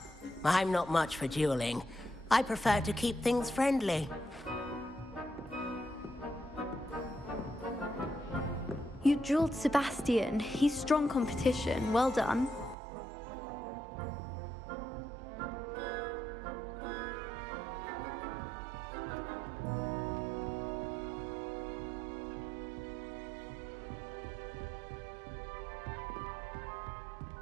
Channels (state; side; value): drops out; left; at 12.8 s